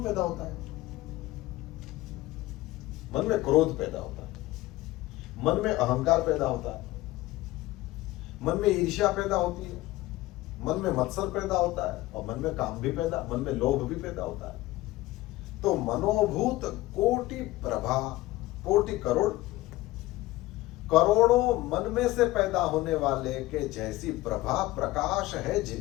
पैदा होता है? मन में क्रोध पैदा होता है, मन में अहंकार पैदा होता है, मन में ईर्ष्या पैदा होती है, मन में मत्सर पैदा होता है, और मन में काम भी पैदा, मन में लोभ भी पैदा होता है। तो मनोभूत कोटि प्रभा, कोटि करोड़, करोड़ों मन में से पैदा होने वाले के जैसी प्रभा प्रकाश है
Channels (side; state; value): right; quieter; 18.0 dB